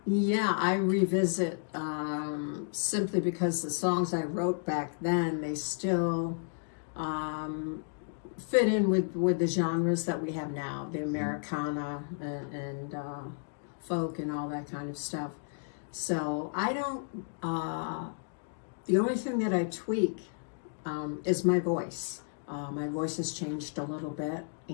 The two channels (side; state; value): right; silent; digital silence